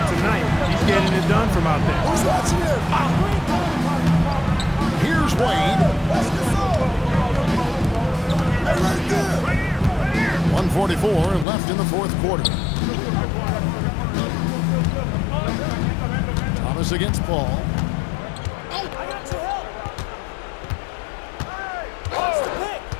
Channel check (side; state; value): right; drops out; at 11.5 s